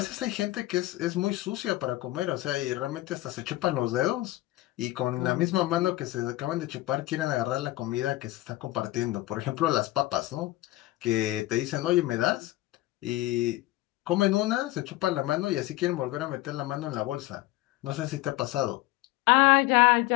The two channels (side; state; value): right; quieter; 17.7 dB